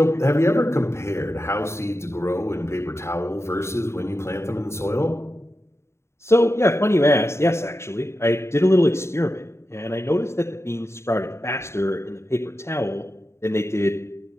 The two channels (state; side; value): late; right; 0.13 ms